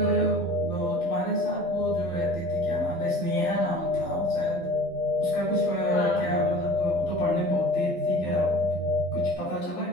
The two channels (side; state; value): right; late; 12 ms